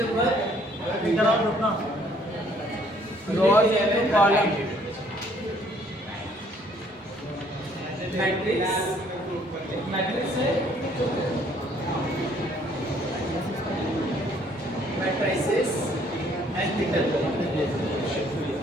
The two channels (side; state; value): both; normal; correlation 0.62